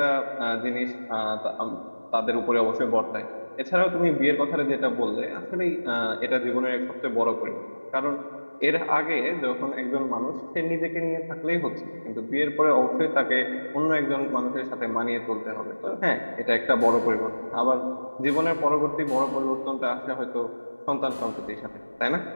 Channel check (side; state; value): both; inverted; correlation -1.00